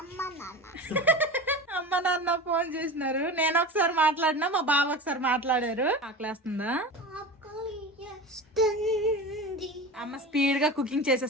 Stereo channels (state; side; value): normal; both; correlation 0.30